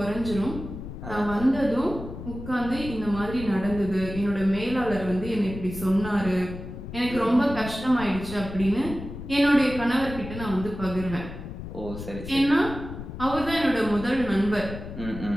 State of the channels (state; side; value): noise; left; rumble, 10 dB below the sound